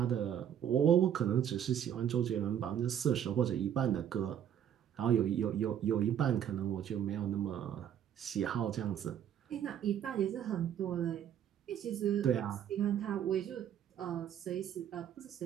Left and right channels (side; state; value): left; quieter; 9.7 dB